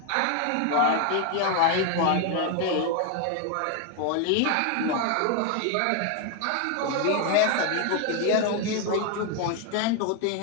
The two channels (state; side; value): different; both; correlation 0.01